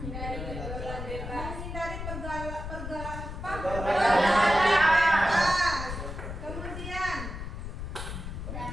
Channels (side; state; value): left; noise; rumble, 7 dB below the sound